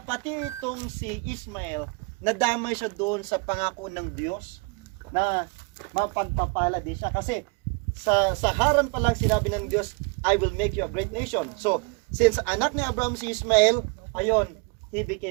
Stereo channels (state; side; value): quieter; left; 31.6 dB